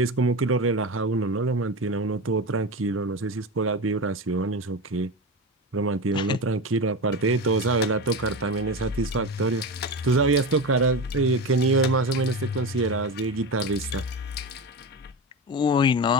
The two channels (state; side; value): normal; both; correlation 0.22